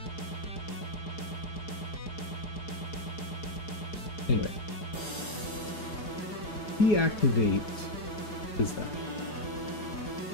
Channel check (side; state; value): right; late; 4.8 ms